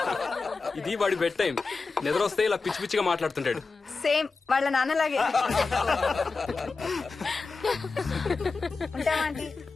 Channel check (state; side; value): quieter; right; 4.2 dB